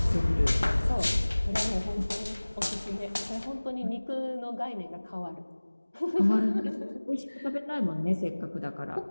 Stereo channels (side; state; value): both; inverted; correlation -1.00